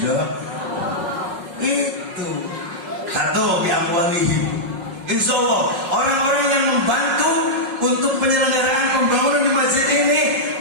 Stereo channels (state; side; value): late; left; 5.5 ms